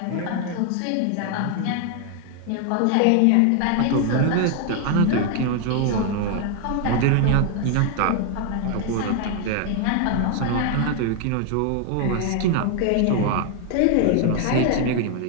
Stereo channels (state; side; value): different; both; correlation 0.00